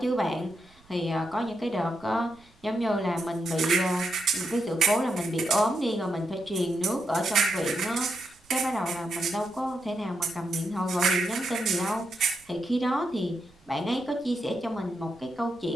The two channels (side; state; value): right; noise; rumble, 29 dB below the sound